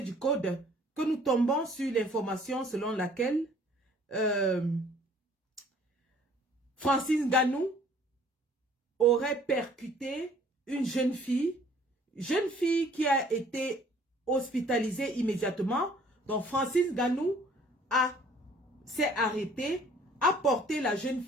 du Code, que nous tombons sur l'information selon laquelle Francis Ngannou aurait percuté une jeune fille qui a été hospitalisée immédiatement. Donc Francis Ngannou s'est arrêté, a porté la jeune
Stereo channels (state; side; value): normal; both; correlation 0.56